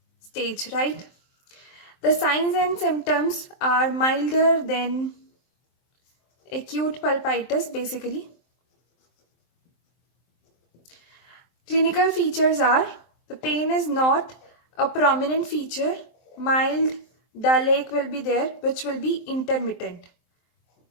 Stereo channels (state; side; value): late; right; 23 ms